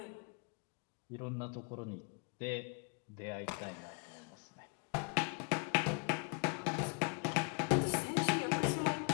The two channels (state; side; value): quieter; right; 36.7 dB